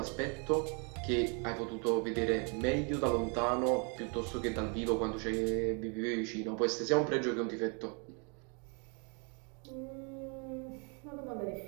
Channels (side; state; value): left; quieter; 36.6 dB